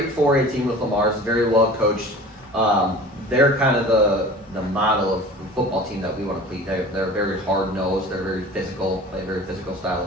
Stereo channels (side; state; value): both; normal; correlation 0.40